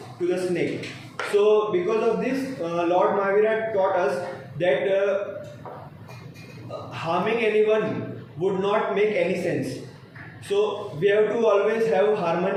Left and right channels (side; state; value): both; identical; correlation 1.00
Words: to the snake. So because of this, Lord Mahavira taught us that harming anyone would not make any sense. So we have to always have